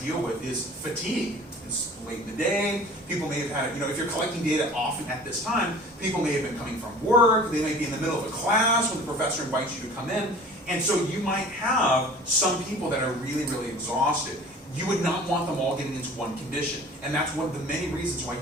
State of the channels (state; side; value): normal; both; correlation 0.44